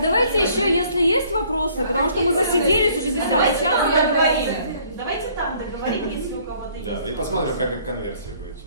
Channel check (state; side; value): inverted; both; correlation -0.60